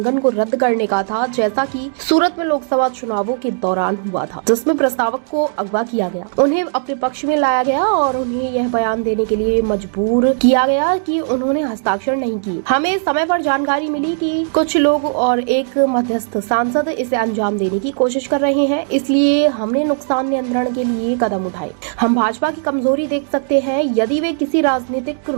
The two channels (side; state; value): left; silent; digital silence